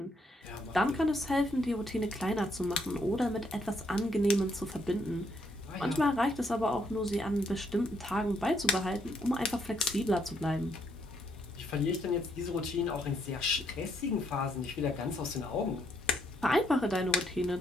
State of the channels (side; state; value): both; normal; correlation 0.73